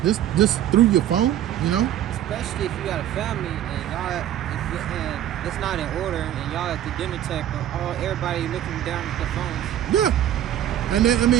Just through your phone, you know? Especially if you got a family and it's not in order and y'all at the dinner table, everybody looking down at their phones. Yeah. And then, I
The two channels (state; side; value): quieter; left; 11.5 dB